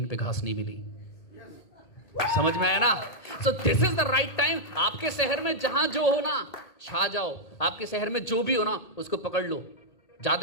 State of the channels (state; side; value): late; right; 1.8 ms